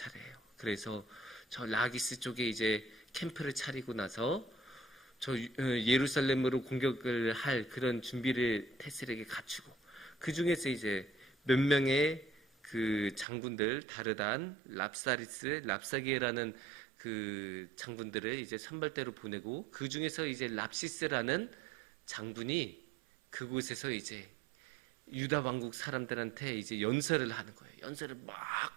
그래서 저 라기스 쪽에 이제 캠프를 차리고 나서 저 예루살렘으로 공격을 할 그런 준비를 태셀에게 갖추고, 그 중에서 이제 몇 명의 그 장군들, 다르단, 랍사리스, 랍사기에라는 그 장군들을 이제 선발대로 보내고, 그 중에서 이제 랍시스라는 장군이 그곳에서 이제 유다 왕국 사람들한테 이제 연설을 하는 거예요. 연설을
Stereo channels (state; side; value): drops out; left; at 13.2 s